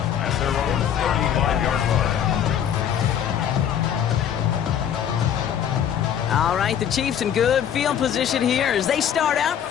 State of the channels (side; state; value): right; quieter; 9.2 dB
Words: At their own 35-yard line. All right, the Chiefs in good field position here as they start out